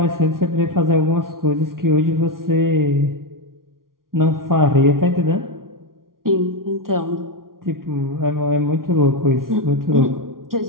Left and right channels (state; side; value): late; left; 0.92 ms